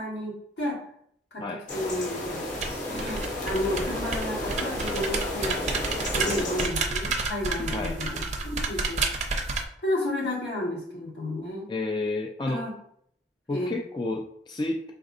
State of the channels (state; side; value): normal; both; correlation 0.51